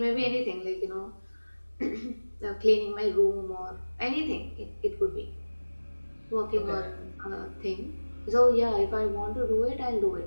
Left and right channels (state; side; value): inverted; both; correlation -1.00